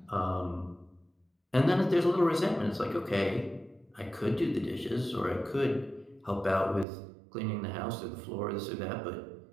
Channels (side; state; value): left; drops out; at 6.9 s